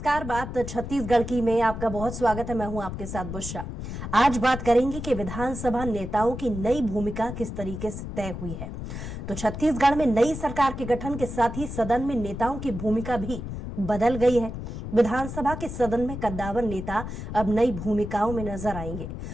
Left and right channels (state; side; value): noise; left; rumble, 7 dB below the sound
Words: बात छत्तीसगढ़ की में आपका बहुत स्वागत है। मैं हूं आपके साथ बुशरा। आज बात करेंगे कि विधानसभा नेताओं की नई भूमिका किस तरीके से तय हुई है। तो छत्तीसगढ़ में नई सरकार के गठन के साथ ही सदन में नेताओं की भूमिका भी बदल गई है। विधानसभा के सदन में कद्दावर नेता अब नई भूमिकाओं में नजर आएंगे।